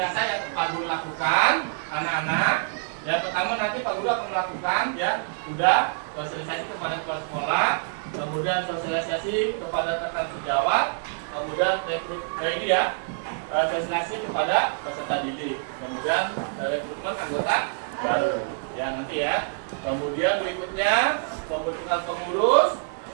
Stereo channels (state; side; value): silent; left; digital silence